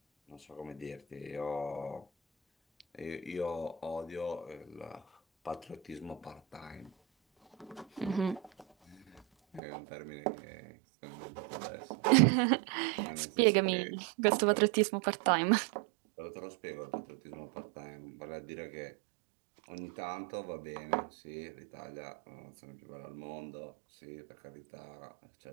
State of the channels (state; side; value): drops out; left; at 9.6 s